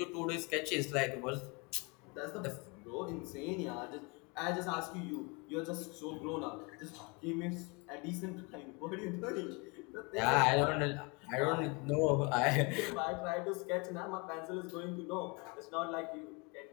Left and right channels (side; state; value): right; quieter; 29.9 dB